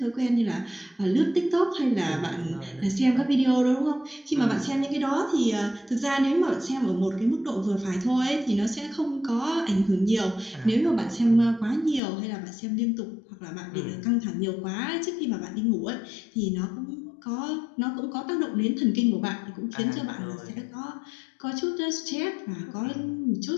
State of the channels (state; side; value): drops out; right; at 12.0 s